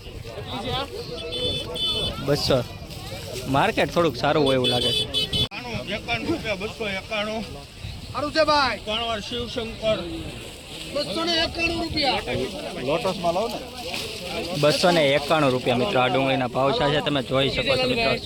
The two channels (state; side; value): identical; both; correlation 1.00